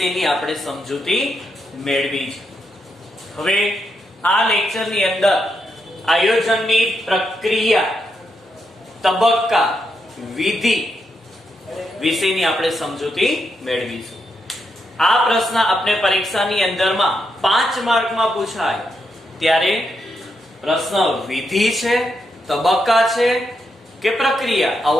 આપણે સમજૂતી મેળવી છે। હવે આ લેક્ચરની અંદર આયોજનની પ્રક્રિયા, તબક્કા, વિધિ વિષયની આપણે સમજૂતી મેળવીશું। આ પ્રશ્ન આપણે પરીક્ષાની અંદરમાં 5 માર્કમાં પૂછાય ત્યારે પ્રશ્ન વિધિ છે, તબક્કા છે કે પ્રક્રિયા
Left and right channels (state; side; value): normal; both; correlation 0.82